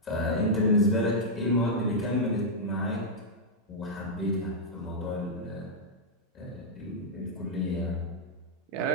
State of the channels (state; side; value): normal; both; correlation -0.06